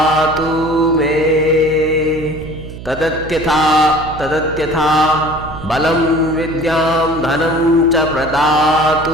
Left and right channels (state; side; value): noise; right; hum, 13 dB below the sound